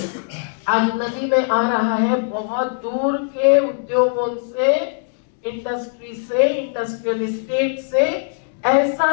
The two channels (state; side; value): silent; right; digital silence